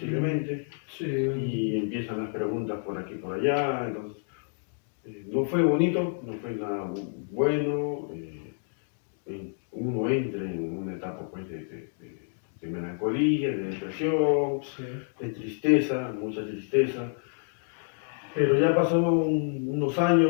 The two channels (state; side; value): silent; right; 59 dB below the other